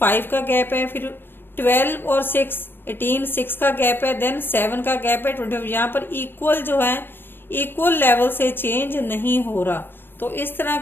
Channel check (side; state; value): right; late; 0.10 ms